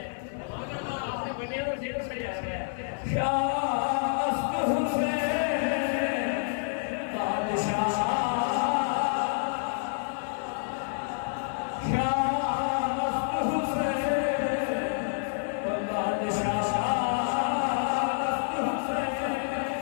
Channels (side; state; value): right; silent; 56 dB below the other